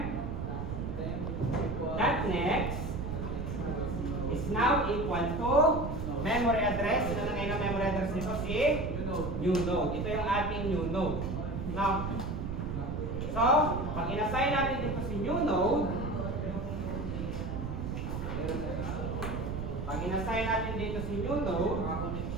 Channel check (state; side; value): noise; right; rumble, 4 dB below the sound